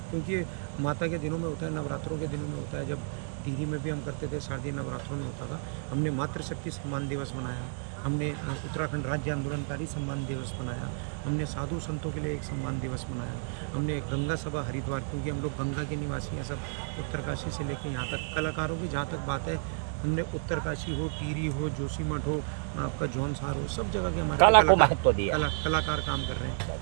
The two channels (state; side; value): silent; left; 57 dB below the other